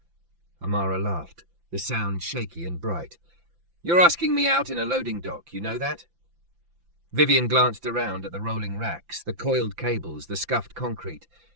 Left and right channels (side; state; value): left; late; 5.9 ms